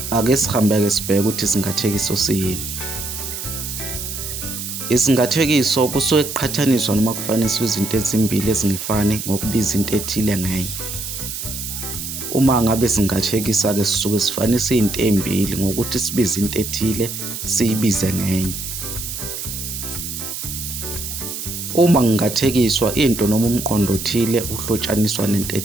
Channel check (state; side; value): noise; right; hiss, 6 dB below the sound